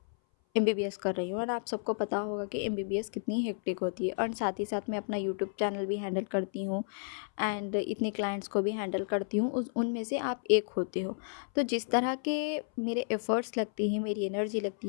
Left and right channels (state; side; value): silent; right; 56 dB below the other